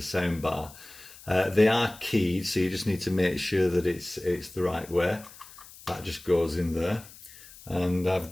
sound bar. They are keyed, so you just need to make sure that it's the right way. That just goes in there. And I've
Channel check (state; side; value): noise; left; hiss, 20 dB below the sound